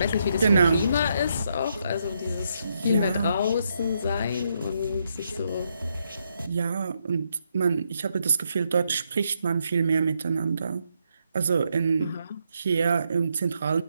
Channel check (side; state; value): both; inverted; correlation -0.78